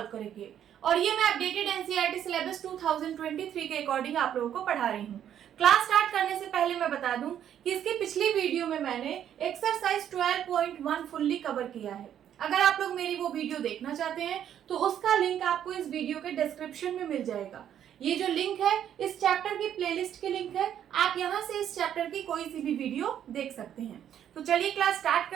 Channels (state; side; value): quieter; left; 10.0 dB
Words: करेंगे और ये मैं अपडेटेड एनसीईआरटी सिलेबस 2023 के अकॉर्डिंग आप लोगों को पढ़ा रही हूँ। क्लास स्टार्ट करने से पहले मैं बता दूं कि इसकी पिछली वीडियो में मैंने एक्सरसाइज 12.1 फुल्ली कवर किया है। अगर आप लोग मेरी वो वीडियो देखना चाहते हैं तो उसका लिंक आपको इस वीडियो के डिस्क्रिप्शन में मिल जाएगा। ये जो लिंक है इस चैप्टर की प्लेलिस्ट की लिंक है, आप यहाँ से इस चैप्टर की कोई सी भी वीडियो देख सकते हैं। तो चलिए क्लास स्टार्ट